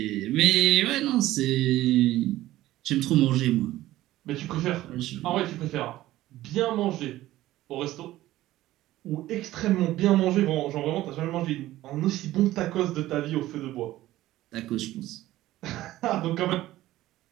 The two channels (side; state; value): left; quieter; 15.5 dB